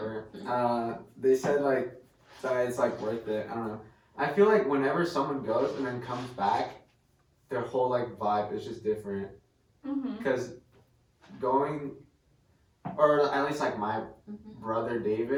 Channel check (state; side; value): identical; both; correlation 1.00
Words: they said like that it's like worth it. I don't know. I feel like whenever someone goes and then comes back, their whole like vibe is just different. Mm-hmm. Because going, or at least like my brother